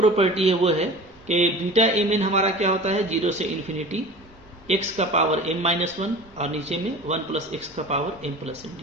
है वो है कि बीटा mn हमारा क्या होता है, 0 से इन्फिनिटी x का पावर m-1 और नीचे में 1 प्लस एक्स का power m plus n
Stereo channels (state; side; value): normal; both; correlation 0.38